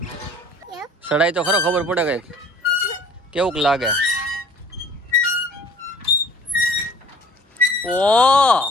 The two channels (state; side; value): normal; both; correlation 0.50